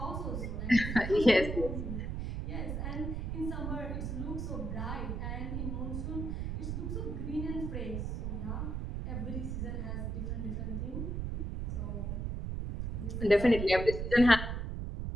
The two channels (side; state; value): right; noise; rumble, 3 dB below the sound